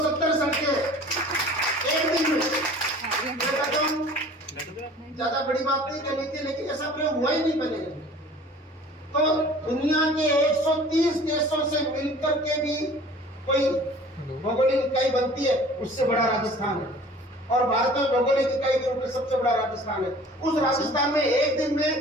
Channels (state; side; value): normal; both; correlation 0.47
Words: सड़कें एक दिन में। ज्यादा बड़ी बात नहीं करनी थी, लेकिन ऐसा प्रयोग हुआ ही नहीं बनेगा। तो दुनिया के 130 देशों से मिलकर के भी कोई भौगोलिक इकाई बनती है, उससे बड़ा राजस्थान है। और भारत में भौगोलिक इकाई के रूप में सबसे बड़ा राजस्थान है। उस राजस्थान में एक दिन में